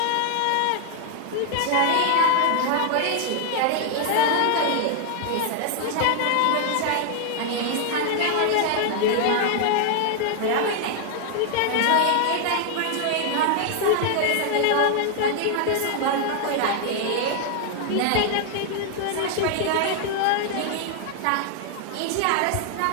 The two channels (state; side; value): different; both; correlation 0.00